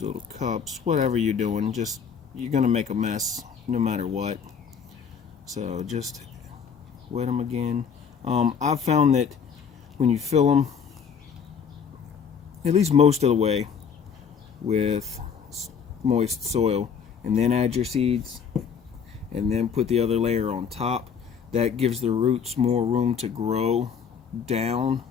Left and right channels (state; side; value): quieter; right; 6.9 dB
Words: little cups, whatever you're doing. Just, you're gonna make a mess no matter what. So just wet them again. I've found that when you fill them, at least most of the way, with moist soil, and then add your seeds, and then put the other layer on top, that gives the roots more room to grow down